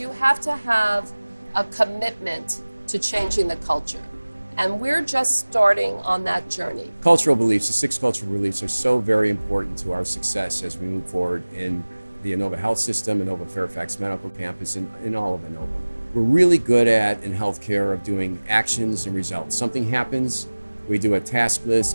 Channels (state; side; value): inverted; both; correlation -1.00